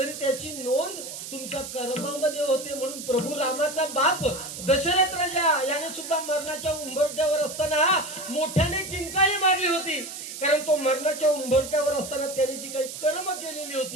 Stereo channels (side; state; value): right; noise; hiss, 9 dB below the sound